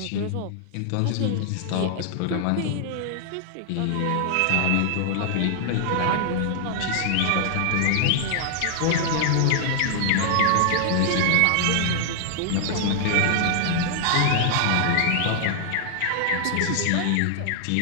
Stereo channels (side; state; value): both; different; correlation 0.00